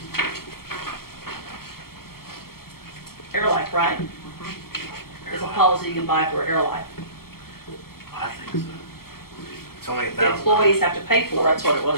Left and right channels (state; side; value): late; right; 0.94 ms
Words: Airlife, right? It's a policy you can buy for Airlife. I think so. It's only The $1,000. employees have to pay Well, for that's it. what it